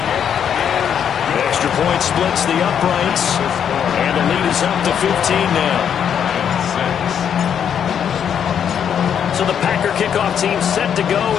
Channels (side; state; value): right; quieter; 8.4 dB